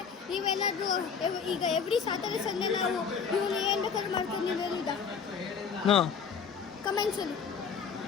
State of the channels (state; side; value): quieter; right; 6.3 dB